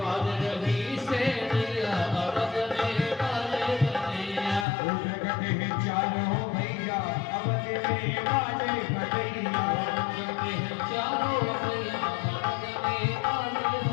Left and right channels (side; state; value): right; drops out; at 4.7 s